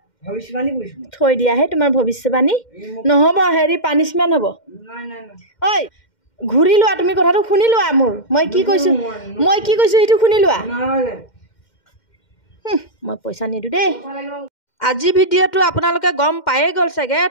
থৈ দিয়াহে তোমাৰ ভৱিষ্যবাণী নহ'ব হেৰি পানিছমেণ্ট হ'ব ঐ ঘূৰি লোৱা তুমি কথাটো শুনি লোৱা মোৰ মই কি কৈছোঁ সেইটো শুনি লোৱা মই পইচা নিদিওঁ দেই আজি ভিডিঅ'টো আপোনালোকে গম পায়ে গ'ল চাগে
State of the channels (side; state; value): right; late; 2.1 ms